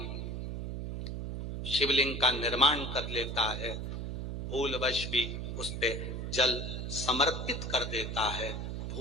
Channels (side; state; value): right; noise; hum, 4 dB below the sound